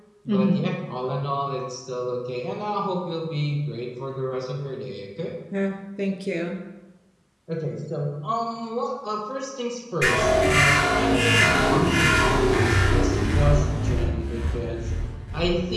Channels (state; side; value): identical; both; correlation 1.00